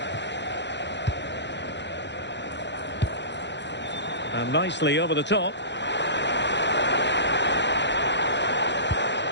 And nicely over the top.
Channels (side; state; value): right; late; 0.52 ms